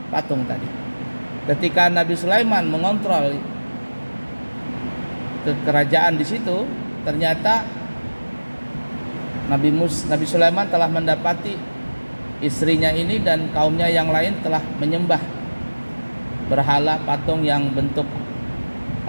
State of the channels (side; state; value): both; inverted; correlation -1.00